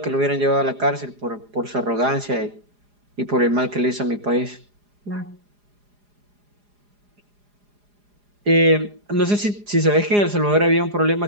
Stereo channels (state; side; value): late; left; 4.9 ms